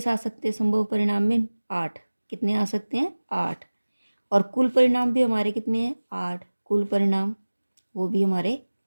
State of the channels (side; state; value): both; inverted; correlation -1.00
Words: आ सकते हैं संभव परिणाम में? 8। कितने आ सकते हैं? 8। और कुल परिणाम भी हमारे कितने हैं? 8। कुल परिणाम वो भी हमारे